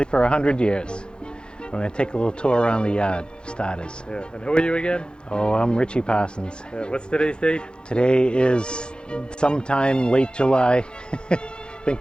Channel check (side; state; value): right; late; 0.049 ms